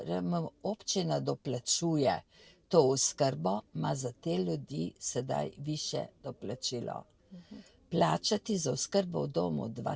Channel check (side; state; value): both; identical; correlation 1.00